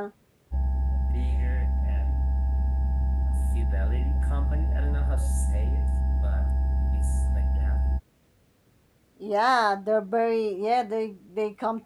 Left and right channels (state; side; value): identical; both; correlation 1.00